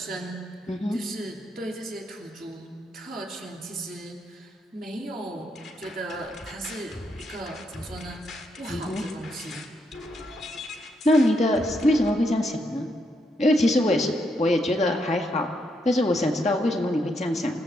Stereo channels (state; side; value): normal; both; correlation 0.78